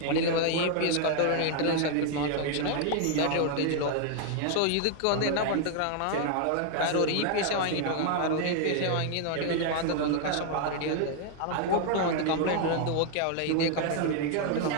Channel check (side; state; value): both; different; correlation 0.00